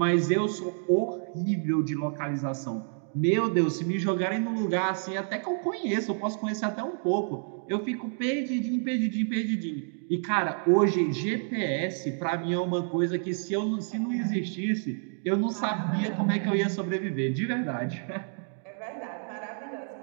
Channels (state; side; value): silent; left; 59 dB below the other